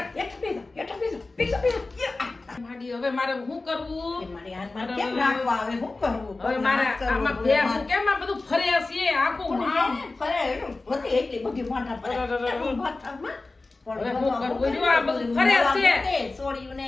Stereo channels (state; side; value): quieter; right; 3.4 dB